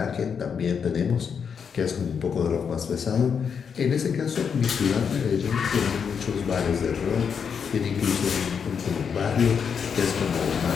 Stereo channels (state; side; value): quieter; right; 6.7 dB